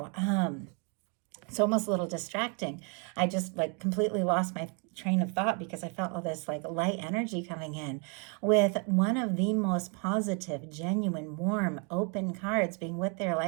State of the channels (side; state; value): left; quieter; 36.0 dB